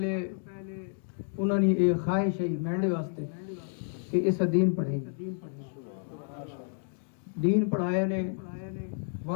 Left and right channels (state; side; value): silent; right; 58 dB below the other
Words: انہوں نے ایک خواہش ہے مینڈے واسطے کہ اس دین پڑھیں. دین پڑھایا نے